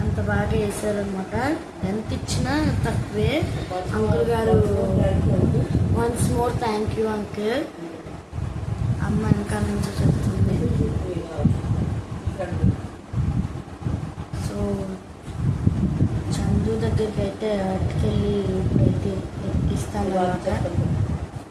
అంత బాగా వేసారనమాట. ఎంత ఇచ్చినా తక్కువే. అంకుల్ గారు once more thank you uncle. అమ్మ ఇంకా నుంచి చెప్తుంది. సో చందు దగ్గరికి అయితే అటుకెళ్ళి ఇప్పుడైతే ఇస్తాను అనమాట.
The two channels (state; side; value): identical; both; correlation 1.00